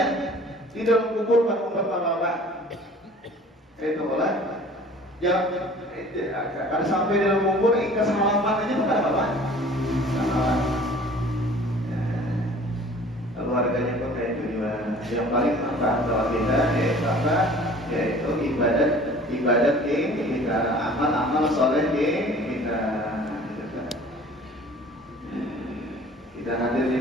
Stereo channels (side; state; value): both; normal; correlation 0.48